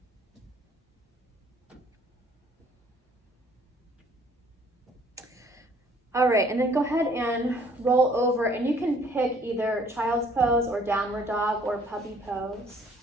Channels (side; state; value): both; normal; correlation 0.59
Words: All right, and then go ahead and roll over, and you can pick either child's pose or downward dog or puppy pose.